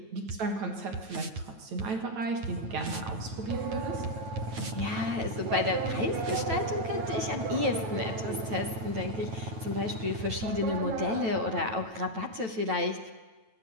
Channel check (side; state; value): left; late; 9.1 ms